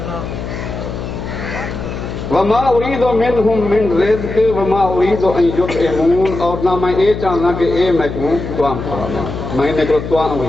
وما اريد منهم من رزق وما اريد ان يطعمون اور نہ میں یہ چاہنا کہ اے میں کو توام کھاواں میں نے کو توام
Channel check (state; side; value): noise; left; hum, 7 dB below the sound